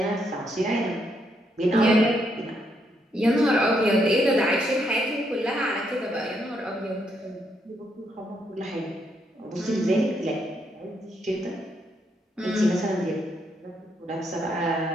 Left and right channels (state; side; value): normal; both; correlation 0.76